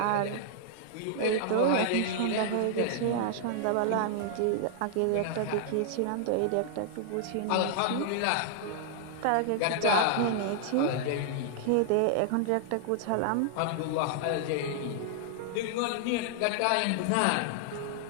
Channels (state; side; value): different; both; correlation -0.01